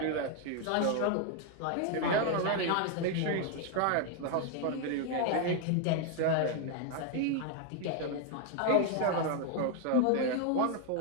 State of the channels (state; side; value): different; both; correlation 0.01